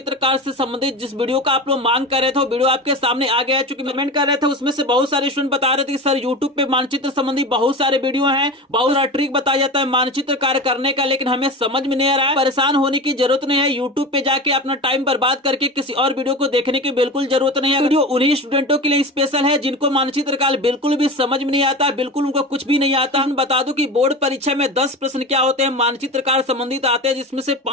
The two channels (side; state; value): both; normal; correlation 0.29